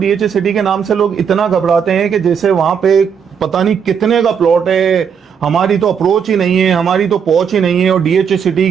सिटी के नाम से लोग इतना घबराते हैं कि जैसे वहां पे पता नहीं कितने का प्लॉट है, हमारी तो अप्रोच ही नहीं है, हमारी तो पहुंच ही नहीं है। और DHA सिटी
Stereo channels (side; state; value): left; quieter; 7.2 dB